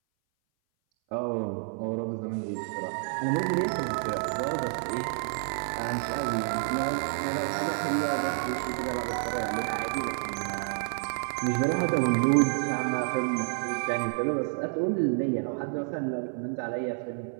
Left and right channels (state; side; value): silent; left; 58 dB below the other